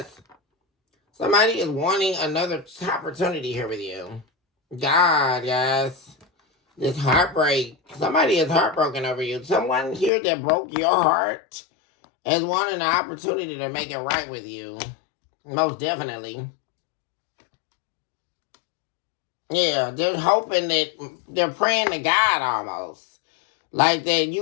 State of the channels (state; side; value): drops out; right; at 10.1 s